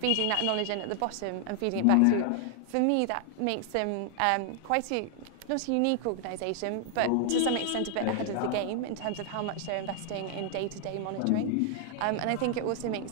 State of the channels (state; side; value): different; both; correlation 0.00